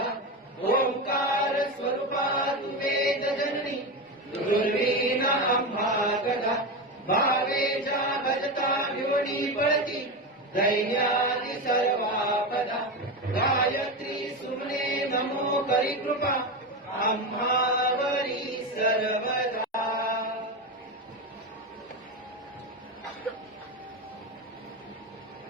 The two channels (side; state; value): both; normal; correlation 0.18